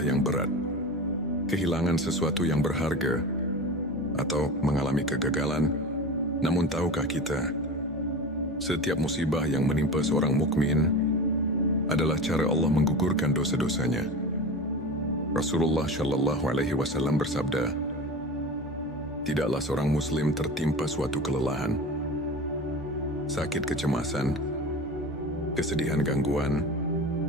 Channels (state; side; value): normal; both; correlation 0.30